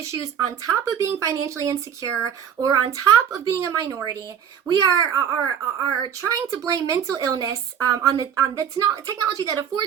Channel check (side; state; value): left; quieter; 8.3 dB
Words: on top of being financially insecure or on top of being a minority. We are trying to blame mental illness on the technology that